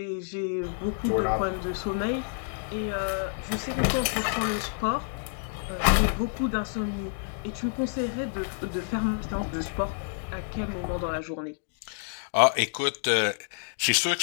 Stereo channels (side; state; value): right; silent; digital silence